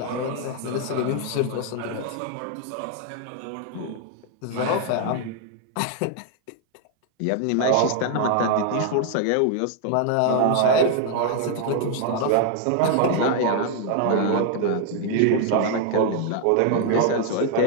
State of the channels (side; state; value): both; different; correlation 0.00